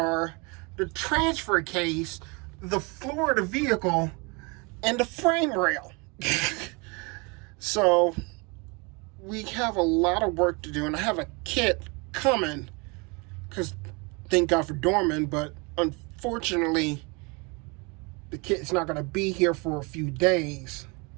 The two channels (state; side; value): quieter; left; 29.6 dB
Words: the transfer case, the floor of the vehicle, and the frame rail. So we have a lot of work to do, and I have a kit coming because thank God for Dorman, but unfortunately the kit's not going to be here for a few days.